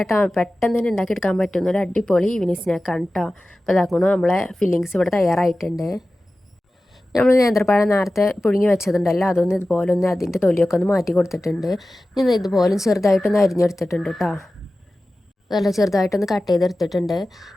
പെട്ടെന്ന് തന്നെ ഉണ്ടാക്കിയെടുക്കാൻ പറ്റുന്ന ഒരു അടിപൊളി ഈവനിങ് സ്നാക്കാണ് കേട്ടോ. അപ്പോൾ അതാക്കണം നമ്മളെ ഫില്ലിങ്സ് ഇവിടെ തയ്യാറായിട്ടുണ്ട്. നമ്മൾ നേന്ത്രപ്പഴം നേരത്തെ പുഴുങ്ങി വെച്ചതുണ്ടല്ലോ അതൊന്ന് ഇതുപോലെ ഒന്ന് അതിൻ്റെ തൊലിയൊക്കെ ഒന്ന് മാറ്റി കൊടുത്തിട്ടുണ്ട്. ഞാൻ ഇതുപോലെ ചെറുതായിട്ടൊന്ന് അരിഞ്ഞെടുത്തിട്ടുണ്ട് കേട്ടോ. നല്ല ചെറുതായിട്ടൊന്ന് കട്ട് ചെയ്തെടുത്തിട്ടുണ്ട്.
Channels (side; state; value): both; normal; correlation 0.95